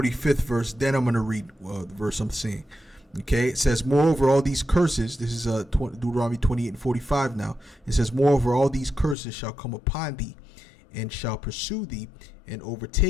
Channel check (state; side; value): drops out; right; at 9.2 s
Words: verse, then I'm going to read the verse I'm saying. Okay, it says, "Moreover, all these curses," this is Deuteronomy 28:45 now. It says, "Moreover, all these curses shall come upon thee, and shall pursue thee, and